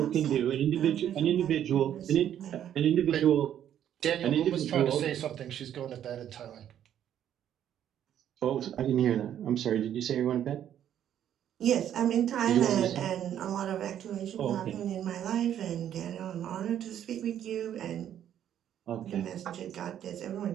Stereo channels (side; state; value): left; quieter; 10.3 dB